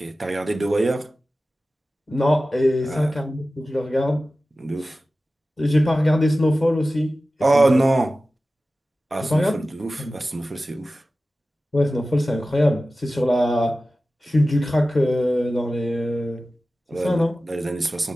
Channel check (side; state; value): both; normal; correlation 0.95